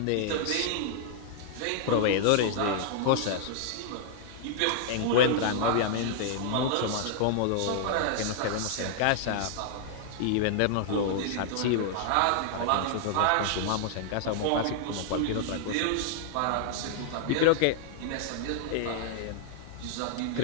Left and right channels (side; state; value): both; different; correlation -0.01